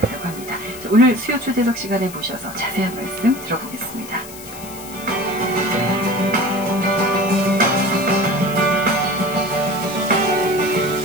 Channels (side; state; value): left; noise; hiss, 15 dB below the sound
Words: 합니다. 자, 오늘 수요 초대석 시간에 모셔서 자세한 말씀 들어보겠습니다.